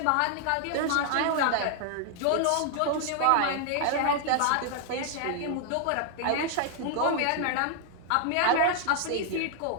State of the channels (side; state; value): both; different; correlation 0.00